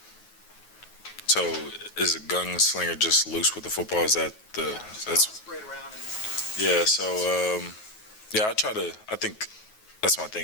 so is a gunslinger just loose with the football? Is that the, that's spread around and... Yeah, so, I think that's my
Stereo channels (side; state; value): right; late; 9.3 ms